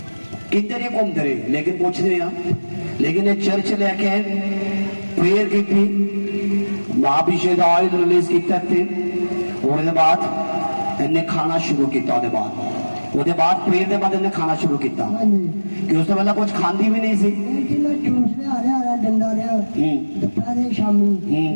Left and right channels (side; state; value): both; inverted; correlation -1.00